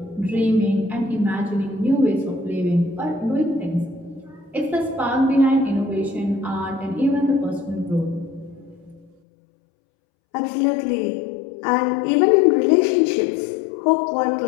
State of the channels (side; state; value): right; drops out; at 9.1 s